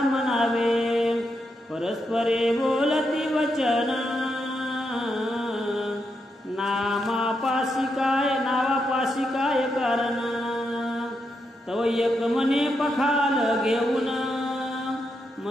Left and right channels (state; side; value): normal; both; correlation 0.83